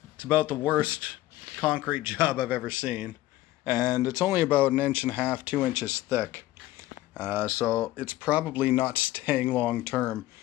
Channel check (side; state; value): right; quieter; 16.2 dB